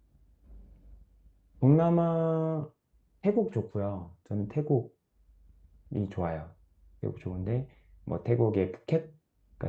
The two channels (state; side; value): identical; both; correlation 1.00